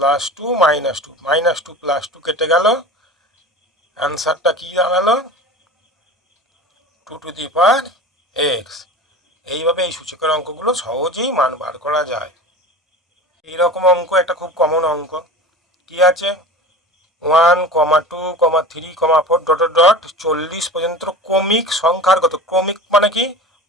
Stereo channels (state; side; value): normal; both; correlation 0.34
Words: 2 -2 -2 + 2 কেটে গেল। অ্যান্সারটা কি দাঁড়ালো? 2⁴x। এইভাবে এই সূচকের অঙ্কগুলো সহজেই মান বার করা যায়। এইরকম অঙ্ক একটা খুব কমন অঙ্ক কি আছে, 1, 2, 3, 4 ... 40 পর্যন্ত ক্রমিক সংখ্যার কত। ক্রমিক মানে কি?